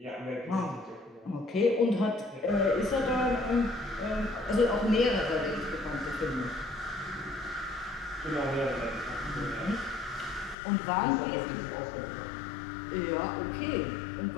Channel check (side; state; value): right; drops out; at 10.6 s